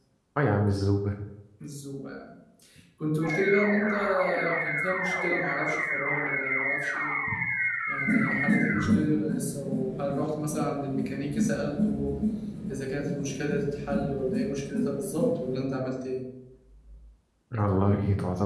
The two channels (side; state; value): both; identical; correlation 1.00